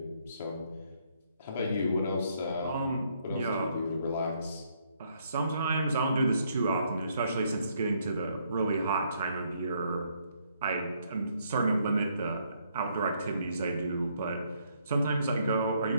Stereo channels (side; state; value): both; inverted; correlation -0.71